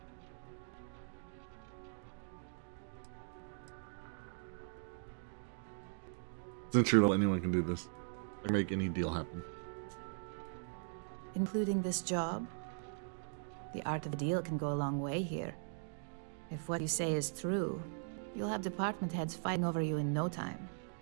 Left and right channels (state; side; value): silent; left; digital silence